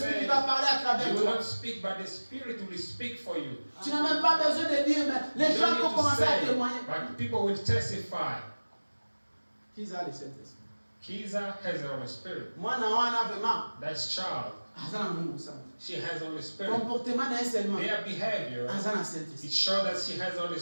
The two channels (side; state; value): both; inverted; correlation -1.00